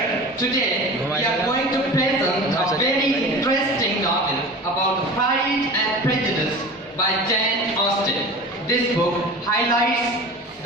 today, we are going to present a very interesting novel about Pride and Prejudice by Jane Austen. This book highlights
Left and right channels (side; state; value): both; normal; correlation 0.36